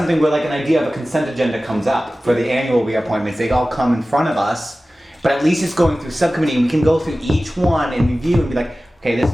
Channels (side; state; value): both; normal; correlation 0.96